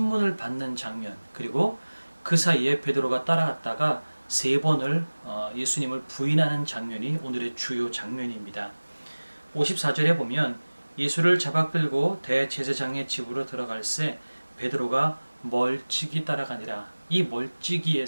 받는 장면, 그리고 그 사이에 베드로가 따라갔다가 세 번을 예수님을 부인하는 장면이 오늘의 주요 장면입니다. 54절에 보면 예수를 잡아 끌고 대제사장의 집으로 들어갈새 베드로가 멀찍이 따라가니라. 이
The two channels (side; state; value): both; inverted; correlation -1.00